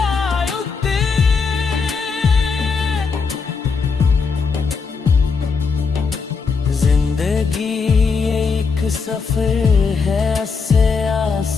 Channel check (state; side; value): quieter; right; 5.1 dB